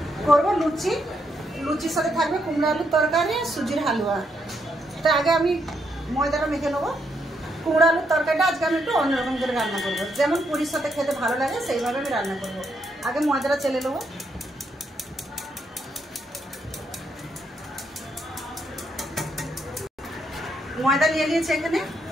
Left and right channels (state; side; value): normal; both; correlation 0.77